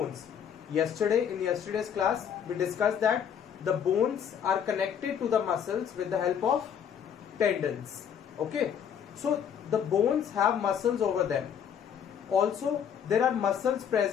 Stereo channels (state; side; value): quieter; right; 8.2 dB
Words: In yesterday's class we discussed that the bones are connected to the muscles with the help of tendons. Okay, so the bones have muscles over them. Also, there are muscles